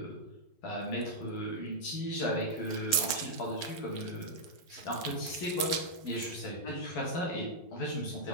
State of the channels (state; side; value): late; right; 11 ms